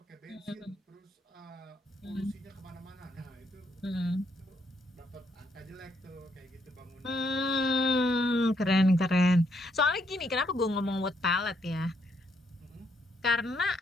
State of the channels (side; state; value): both; normal; correlation 0.74